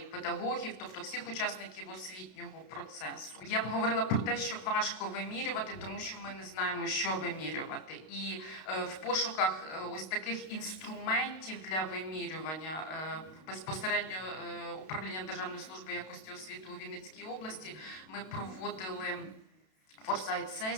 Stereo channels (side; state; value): right; late; 32 ms